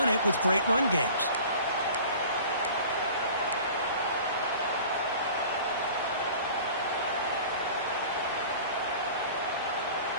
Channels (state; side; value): inverted; both; correlation -0.43